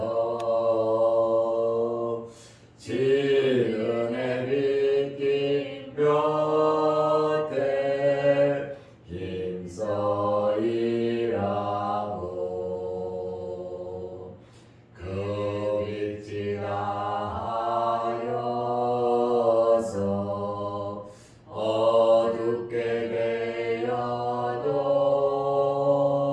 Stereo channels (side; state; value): both; identical; correlation 1.00